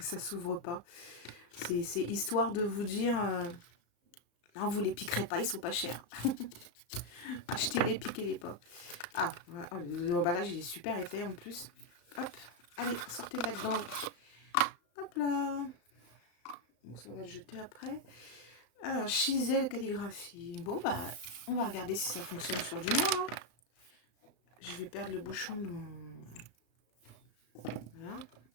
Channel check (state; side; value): late; right; 34 ms